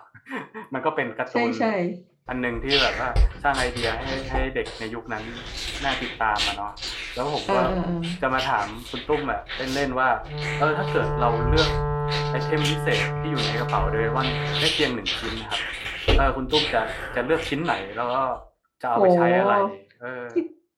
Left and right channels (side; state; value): both; identical; correlation 1.00